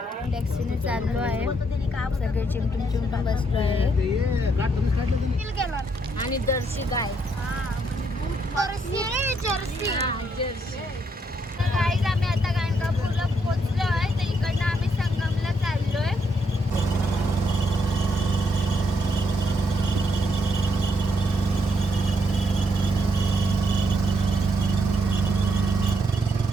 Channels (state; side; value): normal; both; correlation 0.75